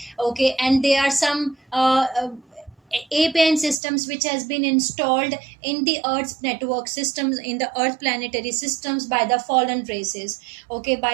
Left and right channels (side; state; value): left; drops out; at 3.8 s